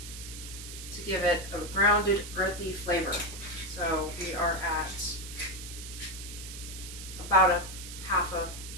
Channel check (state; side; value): noise; right; hiss, 11 dB below the sound